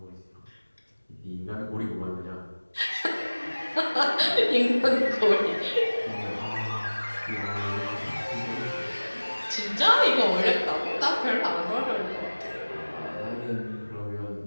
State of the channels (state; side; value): inverted; both; correlation -1.00